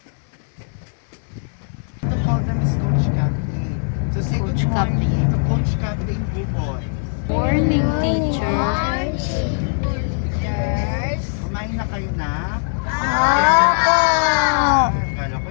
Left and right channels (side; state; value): right; silent; 66 dB below the other